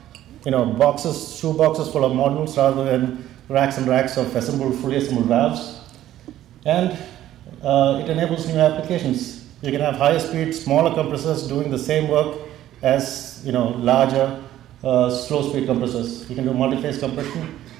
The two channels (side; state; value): left; quieter; 13.0 dB